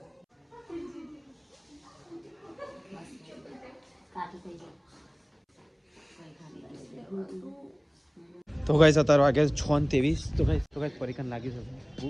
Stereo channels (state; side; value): identical; both; correlation 1.00